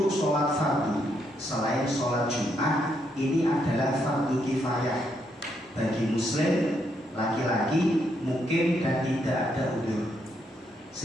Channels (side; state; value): both; normal; correlation 0.77